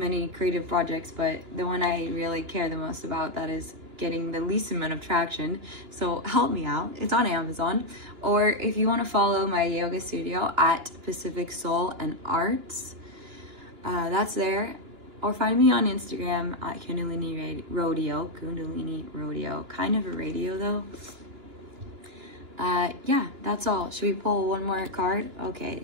creative projects, but the one I really care the most about that is getting the least amount of traction. So help me out. It's on Amazon. Or if you want to follow my yoga studio at Pacific Soul and Arts, that's there. Or find me on Instagram at Kundalini Rodeo. Kundalini Rodeo. Kind of a radio though. Yeah, that's all. Should we pull one more card?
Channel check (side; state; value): left; late; 2.9 ms